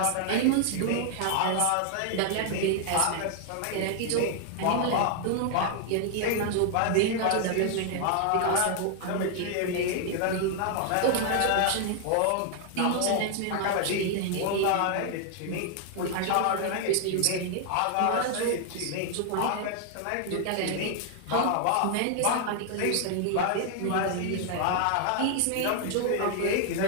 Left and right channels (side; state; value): both; different; correlation 0.00